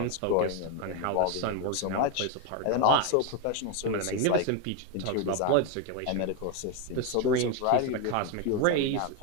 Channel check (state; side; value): different; both; correlation 0.02